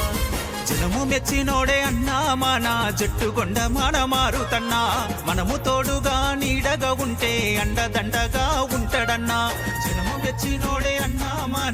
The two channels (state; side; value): identical; both; correlation 1.00